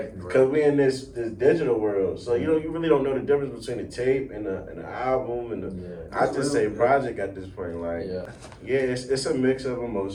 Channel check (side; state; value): both; identical; correlation 1.00